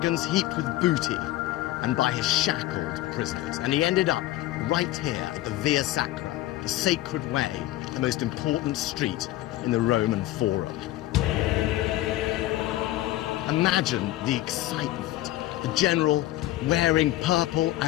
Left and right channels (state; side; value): quieter; right; 15.7 dB